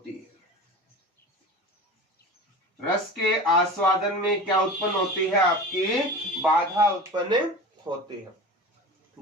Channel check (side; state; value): both; normal; correlation 0.33